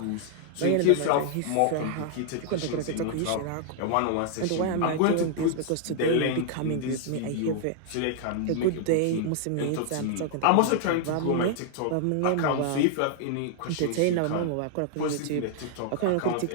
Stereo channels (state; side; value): different; both; correlation -0.01